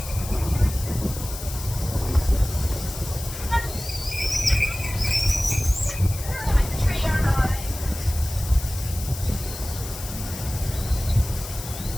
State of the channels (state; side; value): noise; left; hiss, 11 dB below the sound